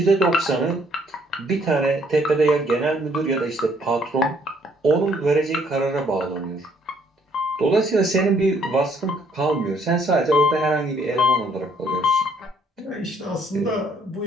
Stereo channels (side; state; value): both; normal; correlation 0.65